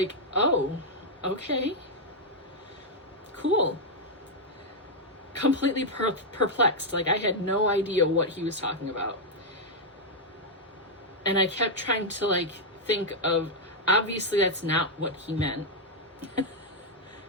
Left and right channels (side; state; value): both; normal; correlation -0.01